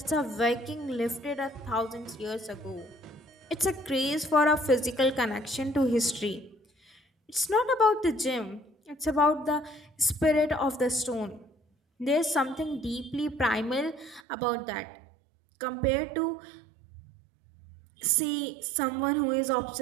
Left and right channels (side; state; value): left; drops out; at 14.2 s